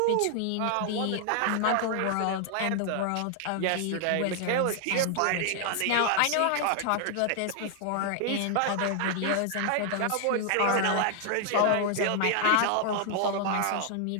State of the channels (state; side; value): different; both; correlation 0.00